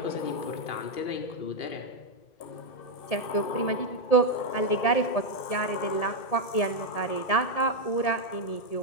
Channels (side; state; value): right; late; 2.7 ms